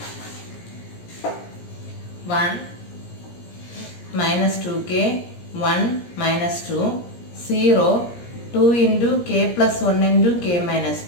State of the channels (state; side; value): late; right; 17 ms